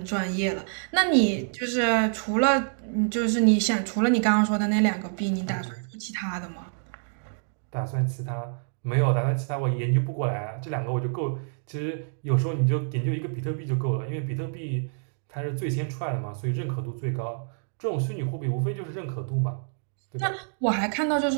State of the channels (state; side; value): silent; left; digital silence